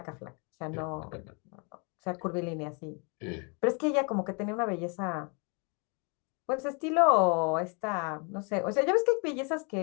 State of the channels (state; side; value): quieter; right; 34.7 dB